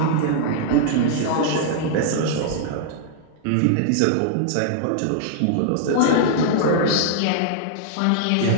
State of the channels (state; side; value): different; both; correlation -0.01